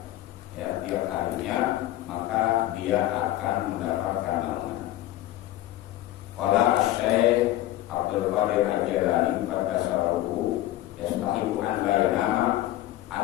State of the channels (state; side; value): quieter; right; 15.0 dB